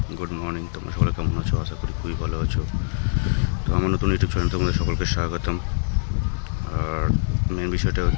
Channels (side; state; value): right; silent; digital silence